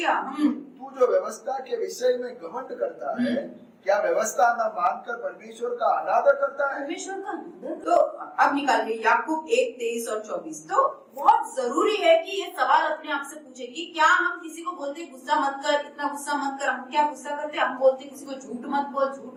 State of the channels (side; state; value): both; identical; correlation 1.00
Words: तू जो व्यवस्था के विषय में घमंड करता है, क्या व्यवस्था न मानकर परमेश्वर का अनादर करता है? परमेश्वर का अनादर। तो अब निकालिए याकूब 1:23 और 24। तो बहुत जरूरी है कि ये सवाल अपने आप से पूछे कि क्या हम किसी को बोलते गुस्सा मत कर, इतना गुस्सा मत कर, हम क्या गुस्सा करते? हम बोलते किसी को झूठ मत बोल,